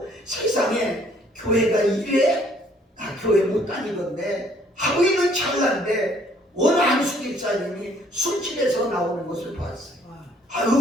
세상에 교회가 이래? 나 교회 못 다니던데 하고 있는 찰나인데 어느 안수 집사님이 술집에서 나오는 것을 봤어요.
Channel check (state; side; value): normal; both; correlation 0.61